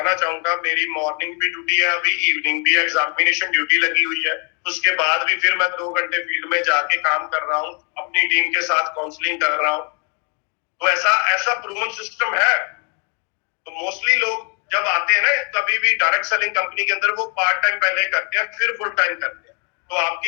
चाहूंगा, मेरी मॉर्निंग भी ड्यूटी है, अभी इवनिंग भी एग्जामिनेशन ड्यूटी लगी हुई है, उसके बाद भी फिर मैं 2 घंटे फील्ड में जाके काम कर रहा हूँ, अपनी टीम के साथ काउंसलिंग कर रहा हूँ। तो ऐसा ऐसा प्रूवन सिस्टम है। तो मोस्टली लोग जब आते हैं ना कभी भी डायरेक्ट सेलिंग कंपनी के अंदर, वो पार्ट टाइम पहले करते हैं फिर फुल टाइम करते हैं। तो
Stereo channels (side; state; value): right; quieter; 36.9 dB